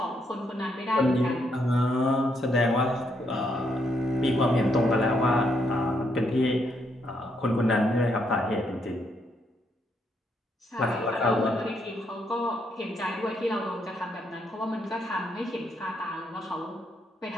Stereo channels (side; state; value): both; normal; correlation 0.75